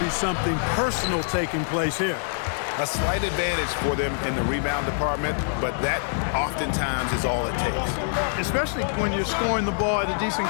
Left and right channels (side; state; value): right; silent; 62 dB below the other